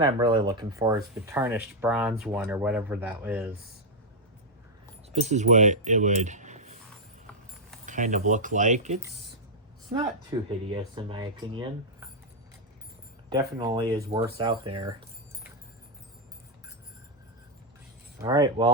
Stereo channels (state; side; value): normal; both; correlation -0.04